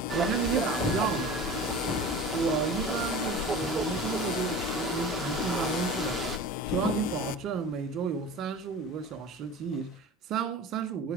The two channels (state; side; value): normal; both; correlation 0.36